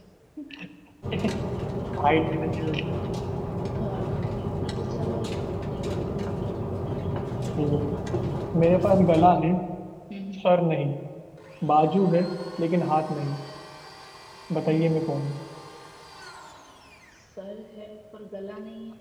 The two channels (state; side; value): identical; both; correlation 1.00